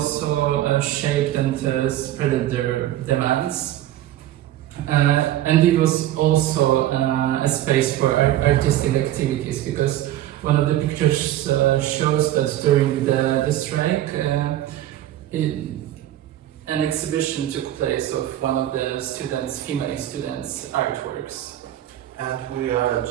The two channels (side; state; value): left; quieter; 13.4 dB